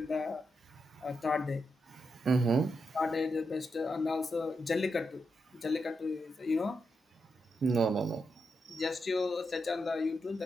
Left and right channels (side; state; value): both; normal; correlation 0.84